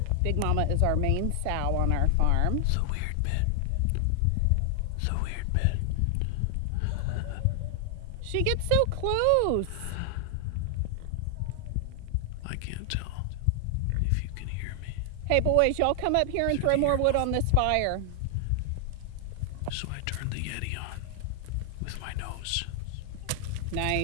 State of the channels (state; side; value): different; both; correlation 0.00